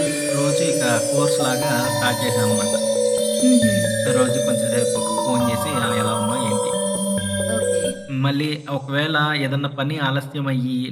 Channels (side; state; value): both; identical; correlation 1.00